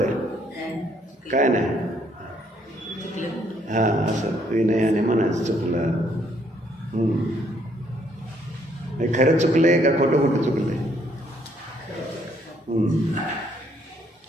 आहे? काय नाही. हां, असं विनयाने म्हणायचं चुकलं. खरंच चुकलंय का खोटं खोटं चुकलंय?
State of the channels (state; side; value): normal; both; correlation 0.68